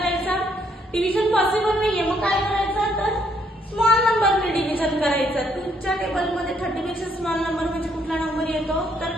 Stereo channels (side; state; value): both; normal; correlation 0.70